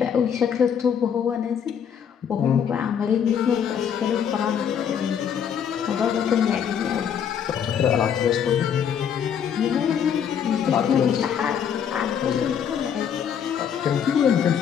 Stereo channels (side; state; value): right; quieter; 8.1 dB